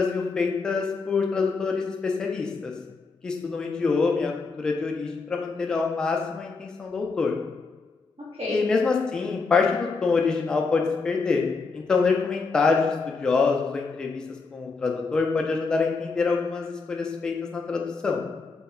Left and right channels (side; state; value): right; quieter; 4.3 dB